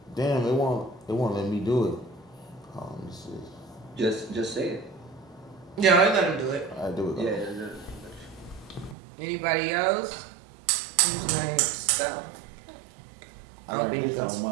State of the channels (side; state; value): left; drops out; at 9.0 s